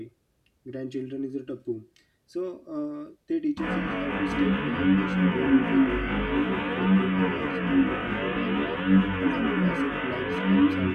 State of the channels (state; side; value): identical; both; correlation 1.00